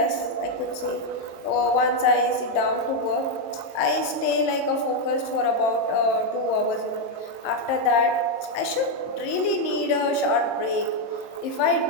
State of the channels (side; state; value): right; late; 23 ms